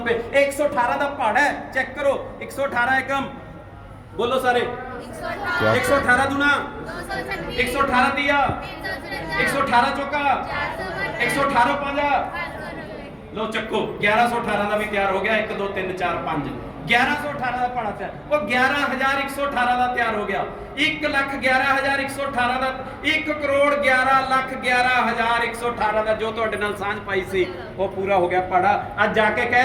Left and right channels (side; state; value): both; identical; correlation 1.00